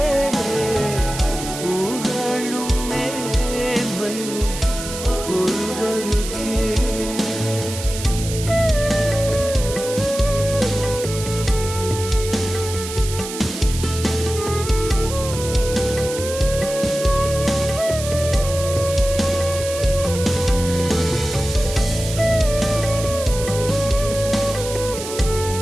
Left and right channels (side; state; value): right; noise; hiss, 9 dB below the sound